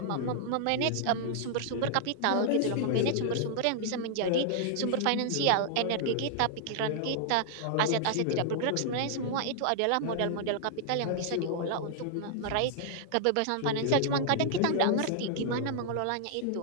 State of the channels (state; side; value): different; both; correlation -0.01